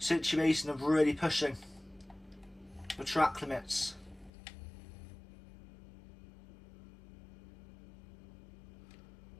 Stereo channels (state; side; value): drops out; right; at 4.3 s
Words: of really pushing the track limits.